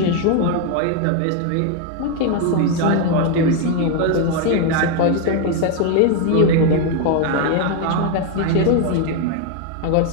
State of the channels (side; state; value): both; different; correlation 0.01